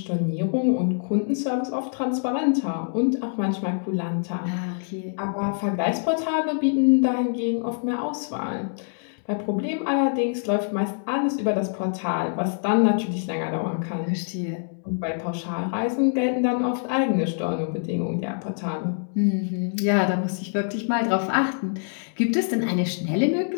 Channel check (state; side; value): silent; right; digital silence